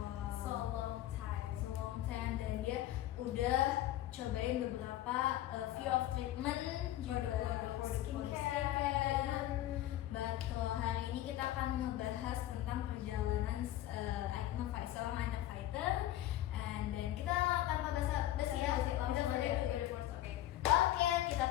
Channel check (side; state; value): right; quieter; 13.7 dB